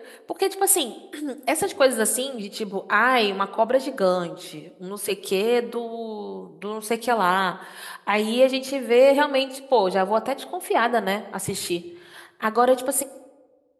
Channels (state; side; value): identical; both; correlation 1.00